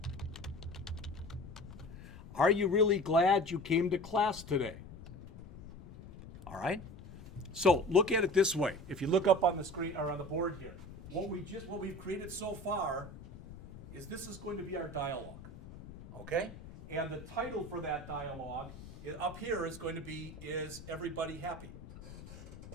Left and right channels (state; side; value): noise; left; rumble, 15 dB below the sound